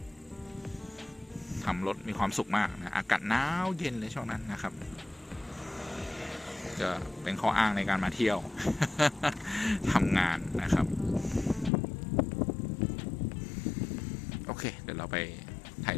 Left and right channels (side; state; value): right; drops out; at 11.7 s